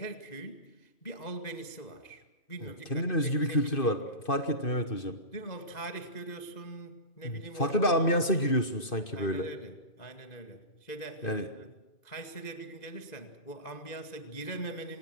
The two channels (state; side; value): late; right; 2.6 ms